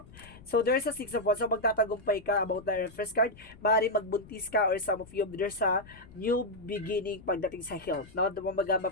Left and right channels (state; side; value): noise; left; rumble, 21 dB below the sound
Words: So, there's a Six of Wands. So, magtatagumpay ka about the first card. Maaaring magbuntis ka or some of you, there's a new beginning pagdating sa health. No?